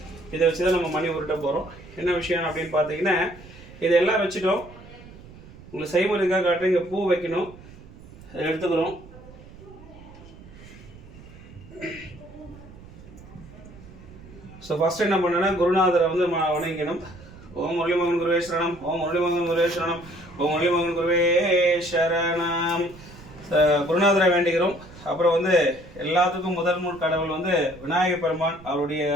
இதை வச்சு தான் நம்ம மணி உருட்ட போகிறோம். என்ன விஷயம் அப்படின்னு பார்த்தீங்கன்னா, இதெல்லாம் வச்சுட்டோம். உங்களுக்கு செய்முறைக்காக காட்டுறேன். இங்கே பூ வைக்கணும், எடுத்துக்கிறோம். ஸோ ஃபர்ஸ்ட் என்ன பண்ணேன்னா, குருநாதரை வந்து வணங்கிக்கணும். ஓம் முரளிமோகன் குருவே சரணம், ஓம் முரளிமோகன் குருவே சரணம், ஓம் முரளிமோகன் குருவே சரணம். குருநாதரை வேண்டிக்கிறோம். அப்புறம் வந்து எல்லாத்துக்கும் முதல் கடவுள் வந்து விநாயக பெருமான். அவருடைய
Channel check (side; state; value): right; noise; rumble, 19 dB below the sound